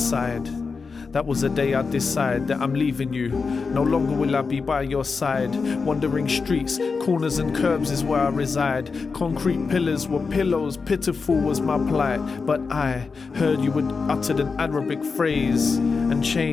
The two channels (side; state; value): right; quieter; 4.8 dB